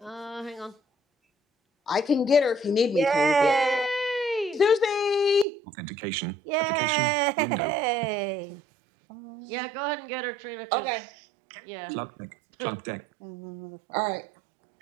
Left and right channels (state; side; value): drops out; left; at 5.5 s